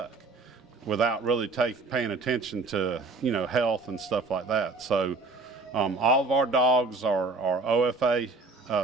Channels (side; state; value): left; quieter; 3.6 dB